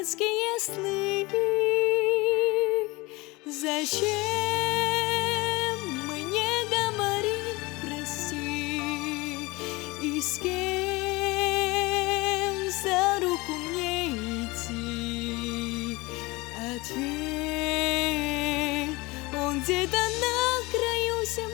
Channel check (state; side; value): quieter; right; 23.2 dB